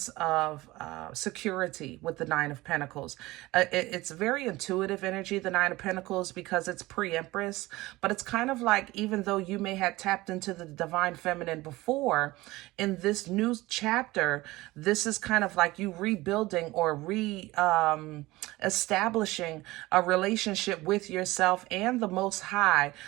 of security with the Nine of Pentacles. It's very intuitive energy, the Nine of Pentacles, because it's pre-Empress, but it's kind of like, even though you may have tapped into the divine feminine before, in this new chapter, this is kind of like you rebuilding or establishing a relationship with yourself and the Most High,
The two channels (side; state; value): left; quieter; 19.4 dB